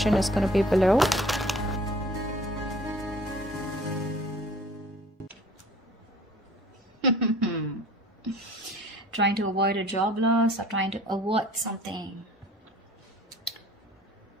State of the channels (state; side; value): normal; both; correlation 0.50